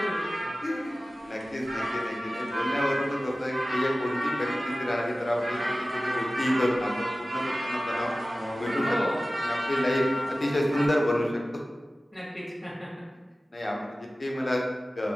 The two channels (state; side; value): normal; both; correlation 0.96